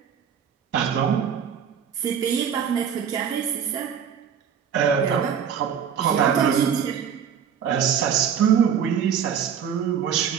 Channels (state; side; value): quieter; left; 7.9 dB